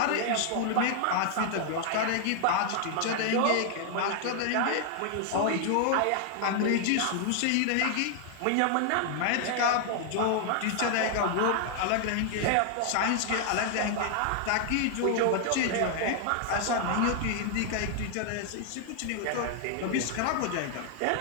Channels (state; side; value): different; both; correlation 0.00